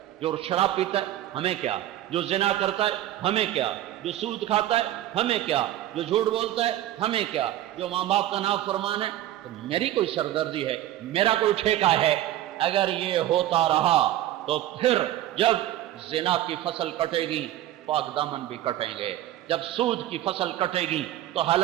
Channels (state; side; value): quieter; left; 13.6 dB